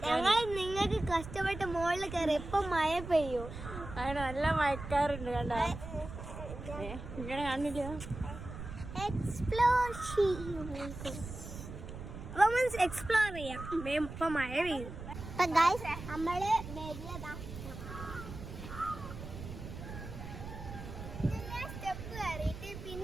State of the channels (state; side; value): noise; right; rumble, 10 dB below the sound